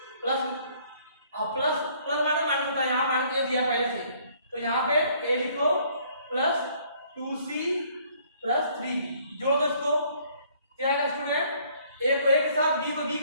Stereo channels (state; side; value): inverted; both; correlation -0.62